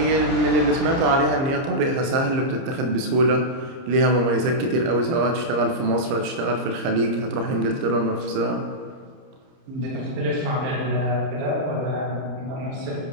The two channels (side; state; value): left; late; 30 ms